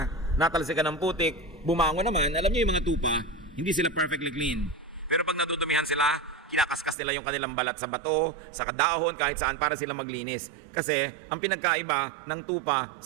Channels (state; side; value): drops out; left; at 7.0 s